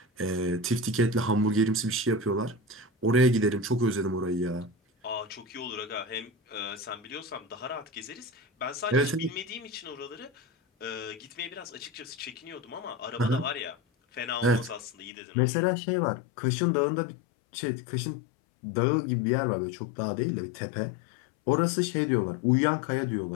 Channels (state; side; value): drops out; right; at 15.1 s